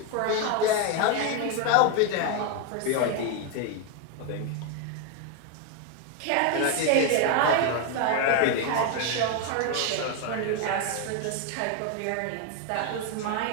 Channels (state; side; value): different; both; correlation 0.01